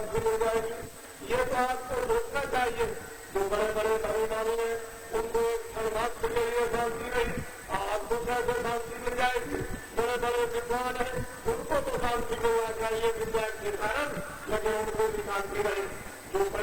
मिल जाएगी? ये तो आपको रोकना चाहिए। जो बड़े बड़े धर्ममानी हैं उनको एक क्षण मात्र के लिए शांति नहीं, आपको कैसे शांति मिल जाएगी? बड़े बड़े विद्वान हैं उनको तो शांति मिलना चाहिए विद्या के कारण, लेकिन उनको भी शांति नहीं। जो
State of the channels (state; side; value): identical; both; correlation 1.00